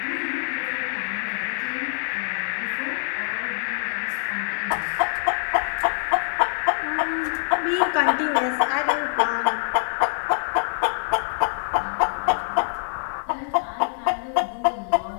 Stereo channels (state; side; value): silent; right; 62 dB below the other